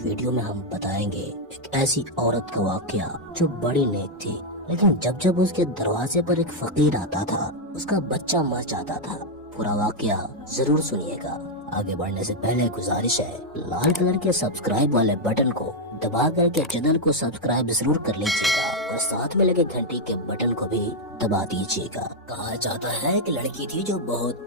ویڈیو میں ہم بتائیں گے ایک ایسی عورت کا واقعہ جو بڑی نیک تھی، لیکن جب اس کے دروازے پر ایک فقیر آتا تھا اس کا بچہ مر جاتا تھا۔ پورا واقعہ ضرور سنیے گا۔ آگے بڑھنے سے پہلے گزارش ہے، لال کلر کے سبسکرائب والے بٹن کو دبا کر کے چینل کو سبسکرائب ضرور کر لیجیے گا اور ساتھ میں لگے گھنٹی کے بٹن کو بھی دبا دیجیے گا۔ کہا جاتا ہے کہ لڑکی تھی جو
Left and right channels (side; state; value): both; normal; correlation 0.00